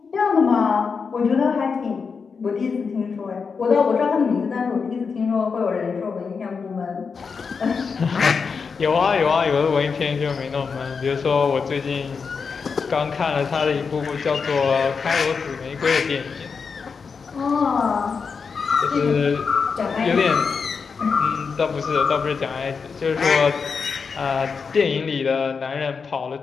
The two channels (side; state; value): right; quieter; 5.4 dB